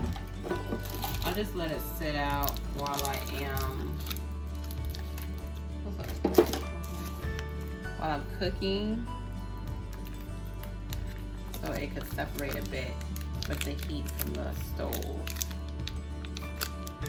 I'll just let it sit out while I'm cooking, so it could separate a bit with the heat from the stove.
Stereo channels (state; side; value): identical; both; correlation 1.00